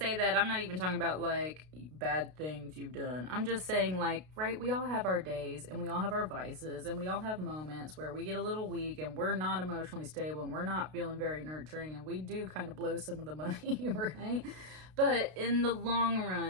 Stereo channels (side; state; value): left; late; 32 ms